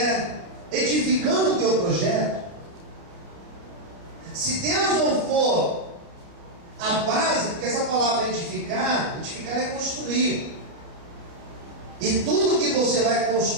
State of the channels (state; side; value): late; left; 30 ms